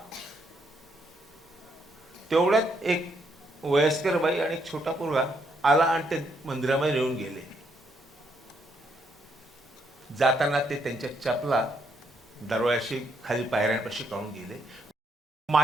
तेवढ्यात एक वयस्कर बाई आणि एक छोटा पोरगा आला आणि ते मंदिरामध्ये नेऊन गेले. जाताना ते त्यांच्या चपला दरवाजाशी खाली पायऱ्यांपाशी काढून गेले.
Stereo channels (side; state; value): both; normal; correlation 0.74